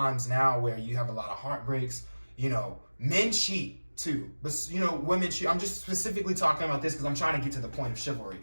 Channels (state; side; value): inverted; both; correlation -1.00